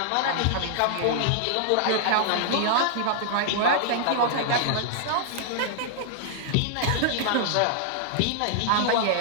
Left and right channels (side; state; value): both; different; correlation -0.01